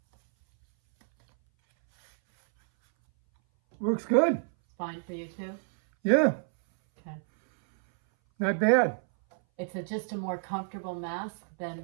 Works good. Fine for you too? Yeah, Okay. not bad. It's just a more comfortable mask than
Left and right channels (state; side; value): silent; left; 59 dB below the other